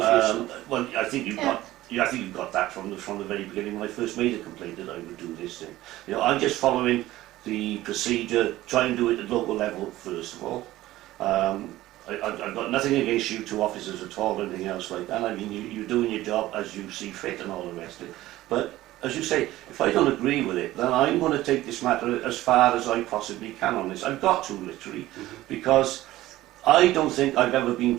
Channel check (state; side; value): quieter; left; 16.1 dB